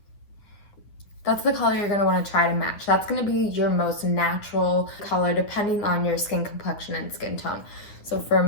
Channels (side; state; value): right; late; 9.7 ms